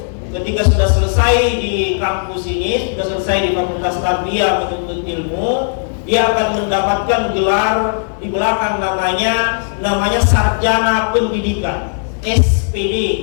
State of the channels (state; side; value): silent; right; digital silence